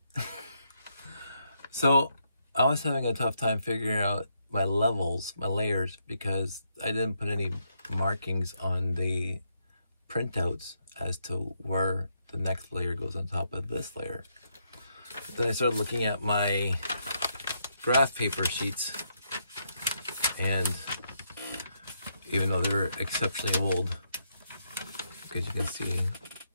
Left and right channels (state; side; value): inverted; both; correlation -0.78